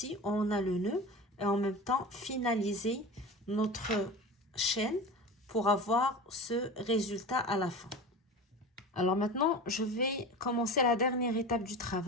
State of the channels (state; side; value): normal; both; correlation 0.31